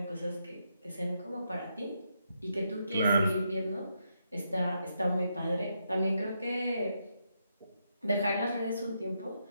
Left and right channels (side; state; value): both; inverted; correlation -0.81